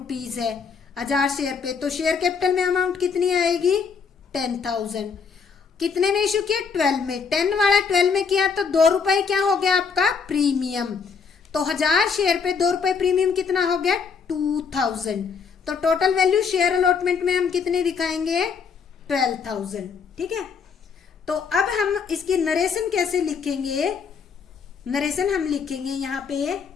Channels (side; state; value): right; quieter; 5.8 dB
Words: है, 1000 शेयर पे, तो शेयर कैपिटल में अमाउंट कितनी आएगी, 10,000। कितने में इशू किया, 12 में, 10 वाला 12 में किया तो 2 रुपए क्या हो गया आपका प्रीमियम, तो 1000 शेयर पे 2 रुपए प्रीमियम कितना हो गया 2000। तो टोटल वैल्यू शेयर अलॉटमेंट में हम कितने दिखाएंगे 12,000। ठीक है, तो अब हम इसकी नरेशन कैसे लिखेंगे? नरेशन हम लिखेंगे यहां पे